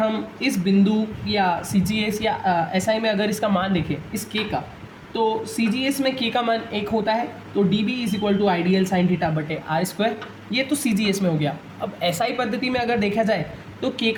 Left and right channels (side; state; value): both; identical; correlation 1.00